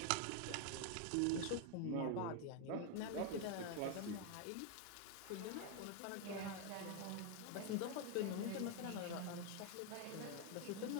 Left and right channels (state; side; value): different; both; correlation 0.01